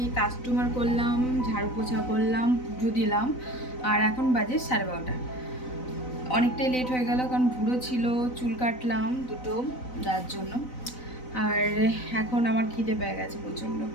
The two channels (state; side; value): late; right; 4.0 ms